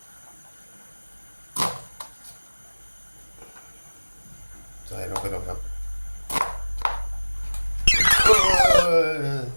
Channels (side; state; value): both; inverted; correlation -1.00